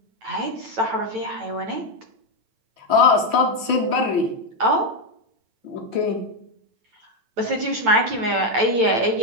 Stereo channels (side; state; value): left; late; 9.0 ms